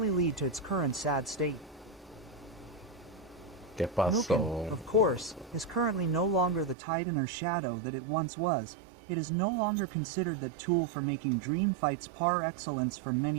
lead to its current sad state. Mugen, of course, is currently no longer the titan or shadow that it once was. It is no longer considered the tool for making dream fights par excellence for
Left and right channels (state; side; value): drops out; left; at 6.8 s